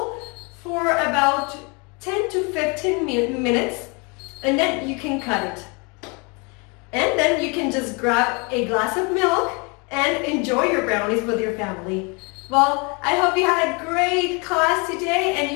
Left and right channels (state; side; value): quieter; right; 31.2 dB